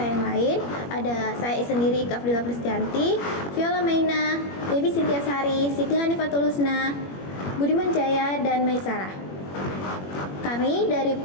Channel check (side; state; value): right; late; 21 ms